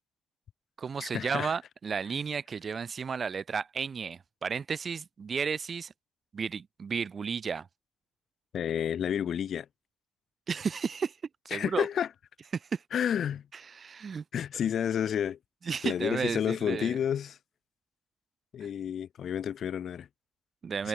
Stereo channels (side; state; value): both; normal; correlation 0.74